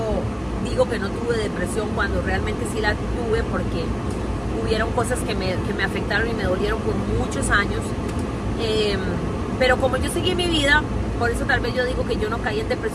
digo que no tuve depresión cuando realmente sí la tuve porque hubieron cosas que me afectaron y me dolieron por muchos años. Pero como yo seguí mi vida, por eso tal vez yo digo que yo no caí en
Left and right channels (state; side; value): identical; both; correlation 1.00